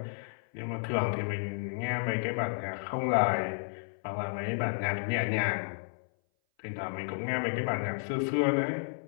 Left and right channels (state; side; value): silent; right; 56 dB below the other